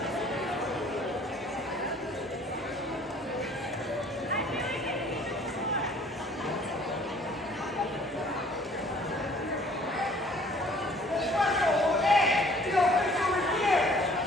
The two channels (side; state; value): both; normal; correlation 0.55